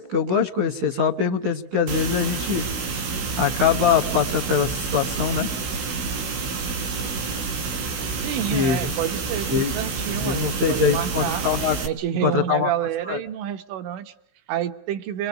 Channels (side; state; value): left; late; 16 ms